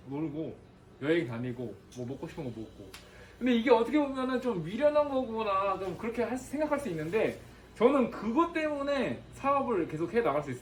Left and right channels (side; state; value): both; identical; correlation 1.00